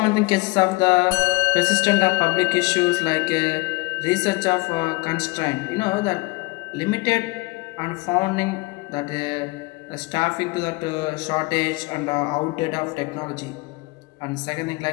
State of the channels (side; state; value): right; quieter; 24.8 dB